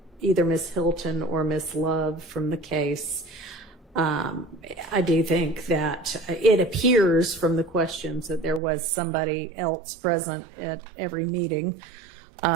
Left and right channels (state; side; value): drops out; left; at 8.6 s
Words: either Ms. Hylton or Ms. Love from the case. I do think that it appears from the questions that there was somebody else present at every meeting.